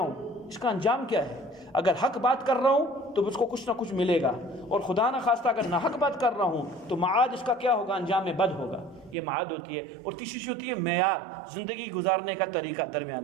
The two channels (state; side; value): drops out; left; at 9.2 s